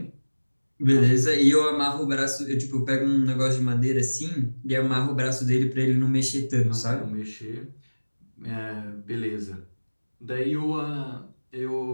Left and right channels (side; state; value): both; inverted; correlation -1.00